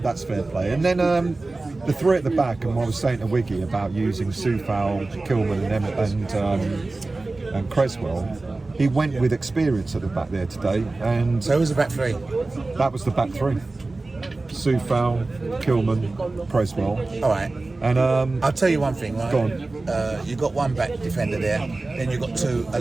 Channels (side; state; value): left; quieter; 3.3 dB